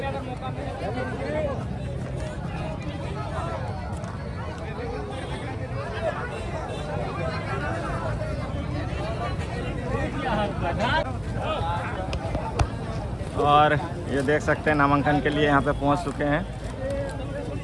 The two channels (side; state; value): both; identical; correlation 1.00